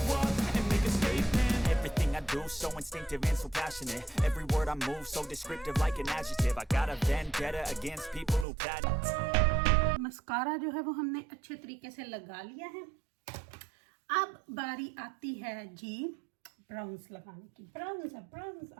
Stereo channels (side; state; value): left; drops out; at 8.5 s